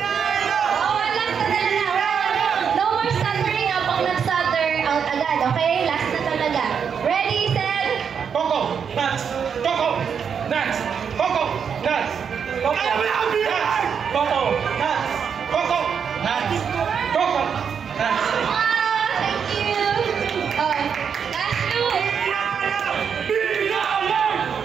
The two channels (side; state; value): left; quieter; 7.0 dB